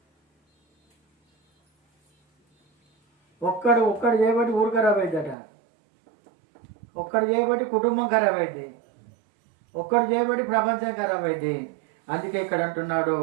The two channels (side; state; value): left; drops out; at 5.4 s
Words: ఒక్కడు చేయబట్టి ఊరు ఖరాబ్ అవుతుందట, ఒక్కడు చేయబట్టి కుటుంబం ఖరాబ్ అయింది, ఒక్కడు చేయబట్టి ప్రపంచం ఖరాబ్ అయింది. అందుకే ఇక్కడ అంటున్నాడు,